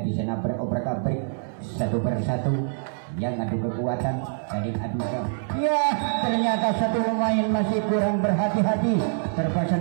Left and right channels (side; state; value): left; silent; digital silence